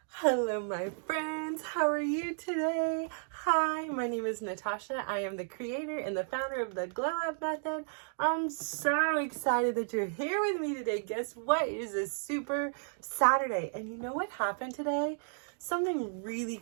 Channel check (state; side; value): silent; left; digital silence